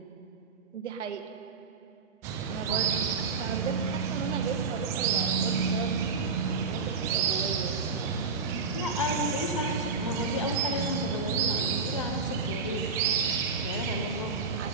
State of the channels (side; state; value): left; quieter; 4.5 dB